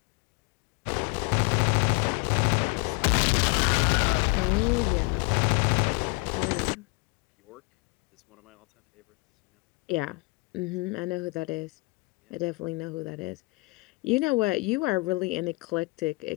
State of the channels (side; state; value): right; quieter; 27.2 dB